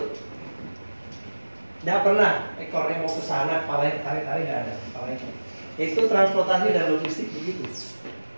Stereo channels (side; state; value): both; inverted; correlation -1.00